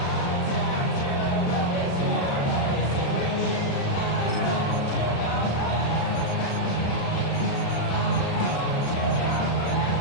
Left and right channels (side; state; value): right; late; 35 ms